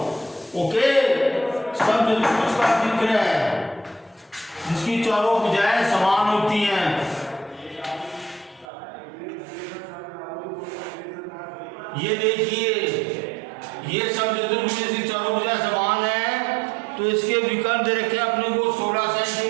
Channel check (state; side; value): drops out; left; at 8.7 s